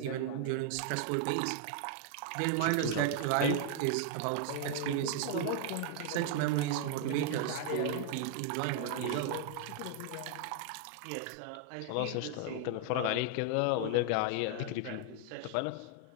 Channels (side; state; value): both; different; correlation 0.00